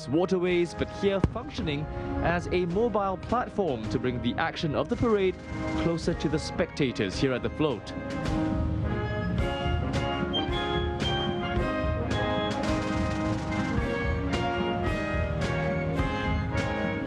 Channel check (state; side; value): identical; both; correlation 1.00